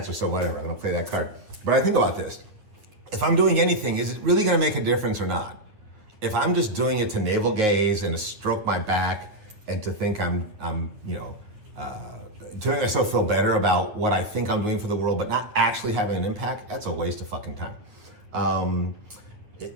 so whatever. I'm gonna play that card. But I think about this. If I'm doing anything, is it really gonna make a difference or not? If I'm just doing it to navel gaze and to stroke my back and to think I'm to make myself feel better about what I think I'm doing for the world, but not actually having an impact, that's a waste of fucking time.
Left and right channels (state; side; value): late; left; 9.2 ms